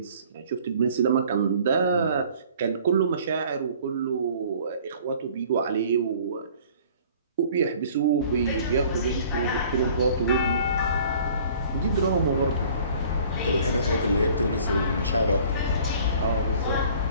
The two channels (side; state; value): both; inverted; correlation -0.52